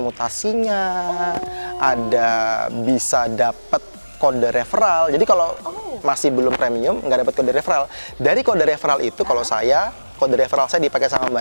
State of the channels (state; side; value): inverted; both; correlation -1.00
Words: ada bisa dapat kode referral. Jadi kalau masih belum premium, nggak dapat kode referral. Dari kode referral itu, kalau saya, kode referral saya dipakai sama